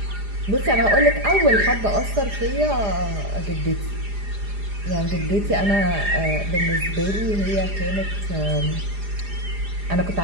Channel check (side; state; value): left; late; 4.9 ms